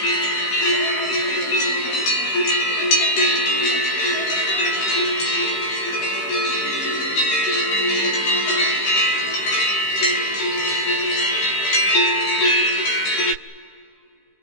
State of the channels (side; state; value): right; late; 15 ms